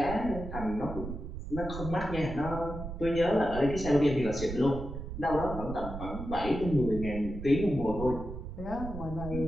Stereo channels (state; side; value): noise; right; rumble, 8 dB below the sound